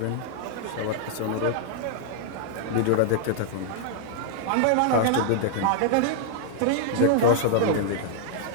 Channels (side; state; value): both; different; correlation -0.01